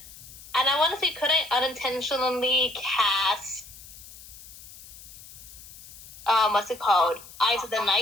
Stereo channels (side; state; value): left; noise; hiss, 18 dB below the sound